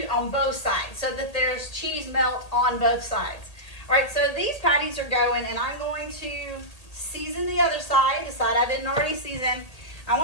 both sides so that there's cheese melt on both sides. All right, so these patties are going, and I'm going to season the other side, the side I didn't already season. I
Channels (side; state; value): right; late; 1.8 ms